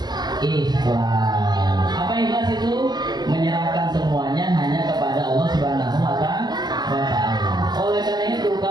ikhlas. Apa ikhlas itu? Menyerahkan semuanya hanya kepada Allah Subhanahu wa taala. Oleh karena itu,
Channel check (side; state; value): left; late; 0.20 ms